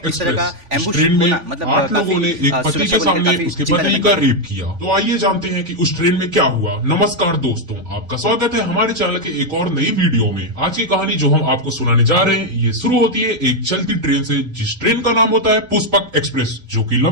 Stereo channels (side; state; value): left; late; 3.5 ms